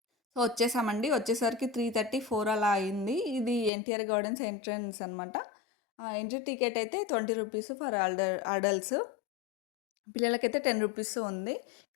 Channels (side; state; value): right; drops out; at 3.7 s